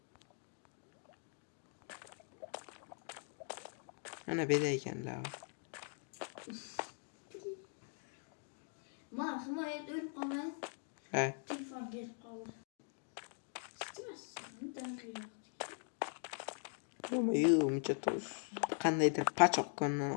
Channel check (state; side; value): silent; right; 50 dB below the other